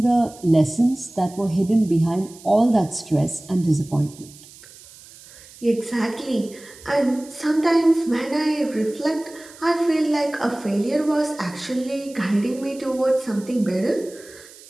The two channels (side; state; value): right; noise; hiss, 21 dB below the sound